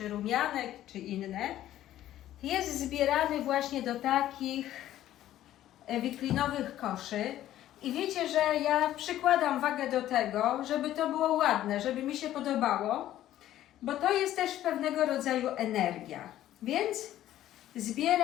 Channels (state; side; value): quieter; right; 13.0 dB